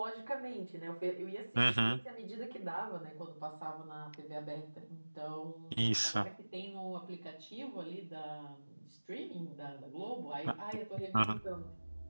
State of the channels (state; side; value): inverted; both; correlation -1.00